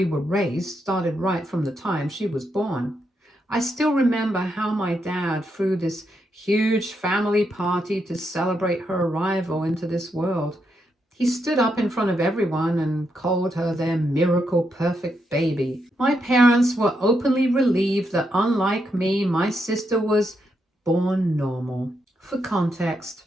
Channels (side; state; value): both; normal; correlation 0.81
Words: were raised started right from the time she was born. I still remember how my dad threw this huge family party to celebrate her arrival into this world. He stood up in front of everyone and called her their miracle perfect baby. My parents were openly relieved that unlike me, my sister was born normal. For context,